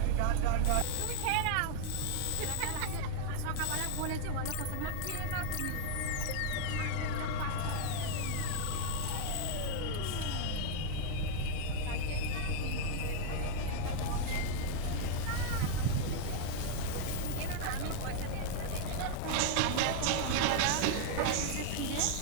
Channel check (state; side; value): different; both; correlation 0.00